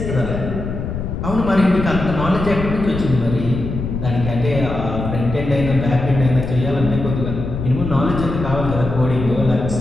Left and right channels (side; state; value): left; noise; rumble, 5 dB below the sound